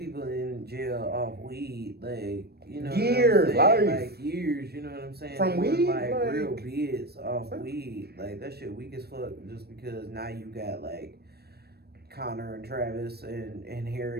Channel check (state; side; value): late; left; 0.47 ms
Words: in jail off weed, like years, like years. You know what I'm saying? From weed, like real bids off weed, like that shit weak as fuck. Just because now you got like Connor and Travis and